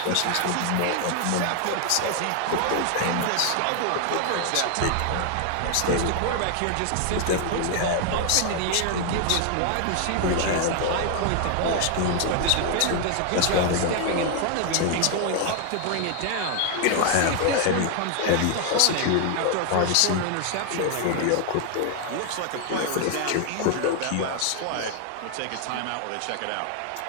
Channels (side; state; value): both; different; correlation 0.00